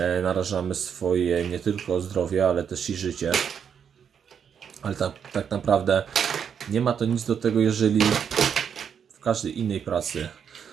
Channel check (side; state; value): left; quieter; 7.6 dB